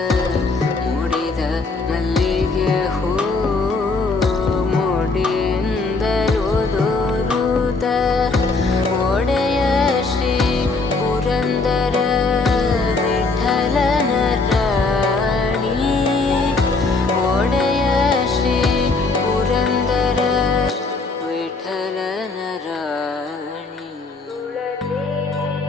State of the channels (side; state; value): right; quieter; 3.8 dB